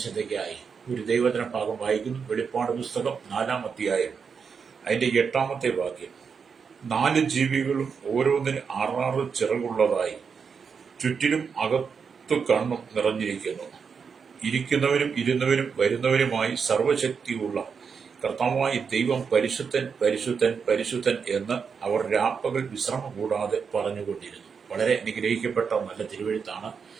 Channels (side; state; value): left; quieter; 6.0 dB